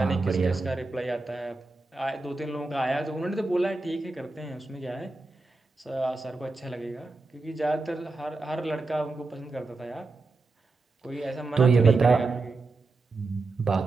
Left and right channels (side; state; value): left; quieter; 3.5 dB